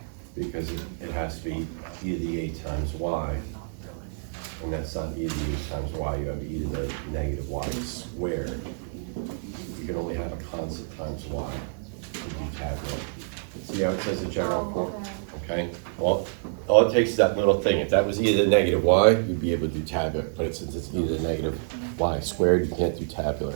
the Because it has to be e to the 8 times y. And that's not e to the 8 times y, you have e to the negative y squared. You can only have a constant times y to do tabular. See how it says a general form? Okay, well, all it takes is that little thing. If that was e to the negative y, you'd be able to do tabular. But since it's e to the negative y squared, you can't do tabular.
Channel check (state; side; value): silent; left; digital silence